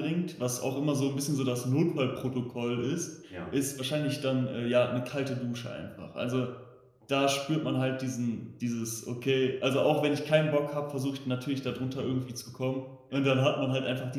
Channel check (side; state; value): both; identical; correlation 1.00